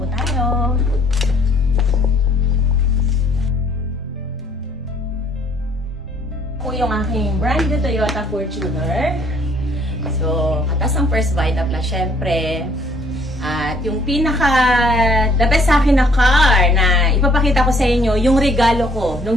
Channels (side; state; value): both; normal; correlation 0.62